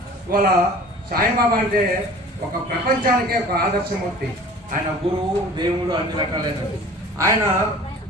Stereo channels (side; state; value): both; normal; correlation 0.44